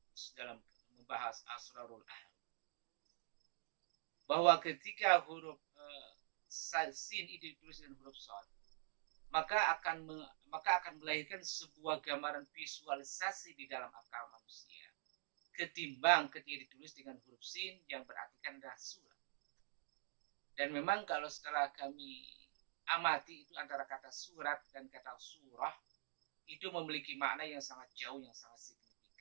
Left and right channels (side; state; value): left; silent; digital silence